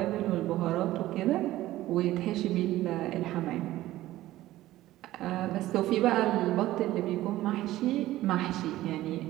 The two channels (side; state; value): left; quieter; 15.6 dB